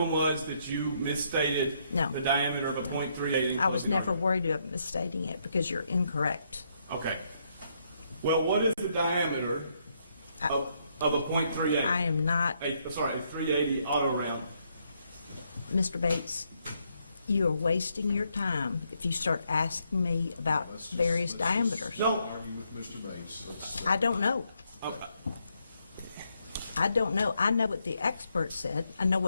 was that you misstated No. the diameter of a .38. I was never worried about misstating it because you're incorrect. Okay. Well, what is the diameter of a .38? I am not, A 380 auto round. Mr. Bates, you are wasting your time if you start asking me about various diameters. No. Argue with Mr. Bates. I don't know. Okay. I don't know. I know what the expert said. I know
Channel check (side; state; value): both; inverted; correlation -0.75